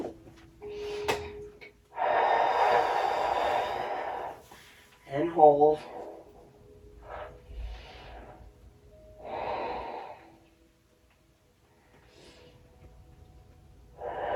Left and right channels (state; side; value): identical; both; correlation 1.00